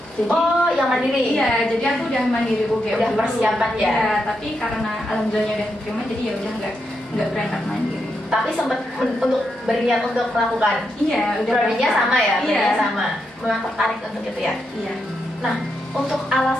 Jadi, Oh, yang mandiri? Iya, jadi aku udah mandiri UGM Udah dulu. persiapan ya? Iya, tapi karena alhamdulillahnya udah diterima, jadi ya udah nggak berangkat mandiri. Tapi sempat untuk berniat untuk melakukan. Iya, udah Prodinya berangkat. sama ya, Iya. prodinya sama. Memang tertarik untuk itu ya. Iya. Nah, untuk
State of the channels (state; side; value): normal; both; correlation 0.83